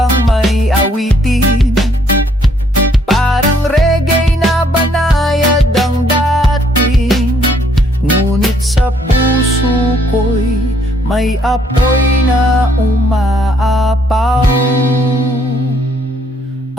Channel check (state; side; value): normal; both; correlation 0.67